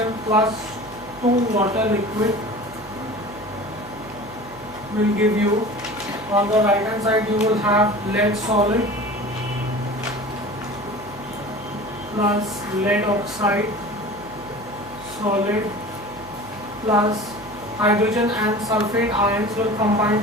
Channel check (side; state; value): right; noise; hum, 20 dB below the sound